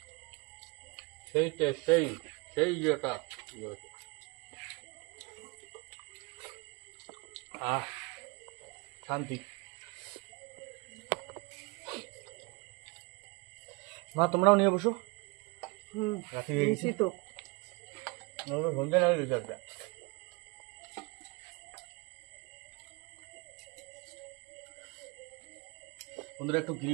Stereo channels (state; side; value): quieter; left; 27.8 dB